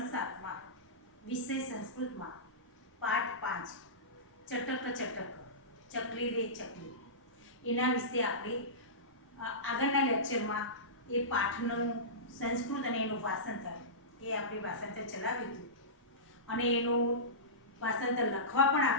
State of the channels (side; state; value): both; normal; correlation -0.20